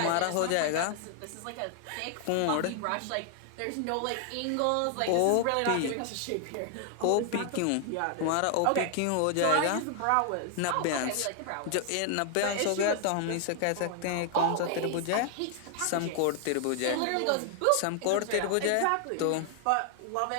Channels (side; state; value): both; different; correlation 0.00